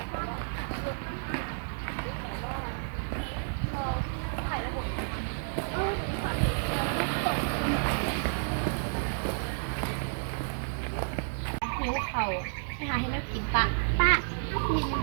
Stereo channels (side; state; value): left; silent; digital silence